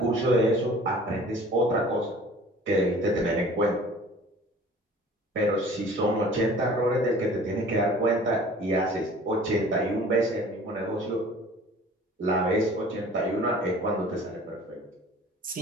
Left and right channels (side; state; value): both; normal; correlation 0.47